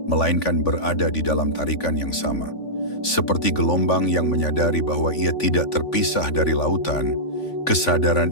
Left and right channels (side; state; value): right; late; 3.5 ms